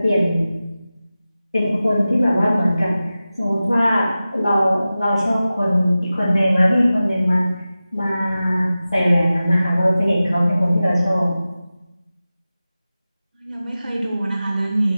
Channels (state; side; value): inverted; both; correlation -0.95